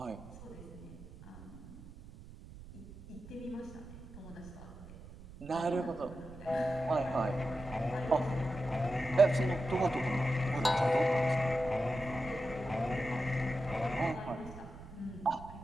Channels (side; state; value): right; noise; rumble, 16 dB below the sound